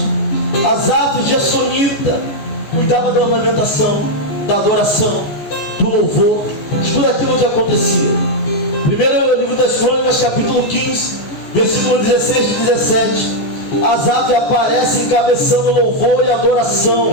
Asaf Gessonita, cuidava da ornamentação, da adoração, do louvor, de tudo aquilo que acontecia. Primeiro livro das Crônicas, capítulo 15, versículo 16 e 17. Asaf aparece encabeçando louvor e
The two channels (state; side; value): late; right; 14 ms